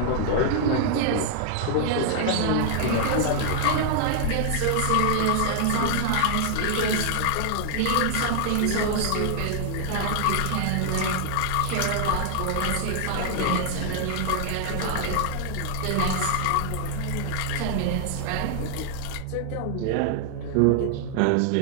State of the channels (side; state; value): both; different; correlation 0.00